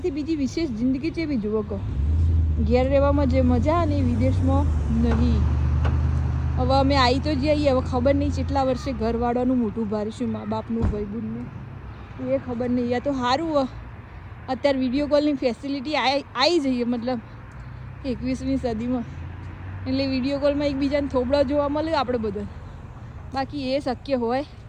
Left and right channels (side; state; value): both; identical; correlation 1.00